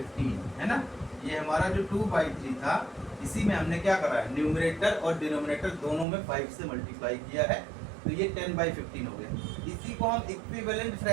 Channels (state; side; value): drops out; left; at 6.1 s